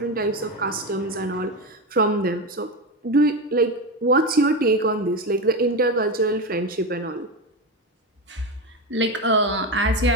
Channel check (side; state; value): both; normal; correlation 0.17